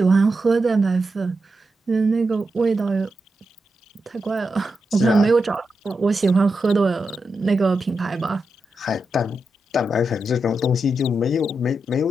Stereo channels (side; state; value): both; normal; correlation 0.87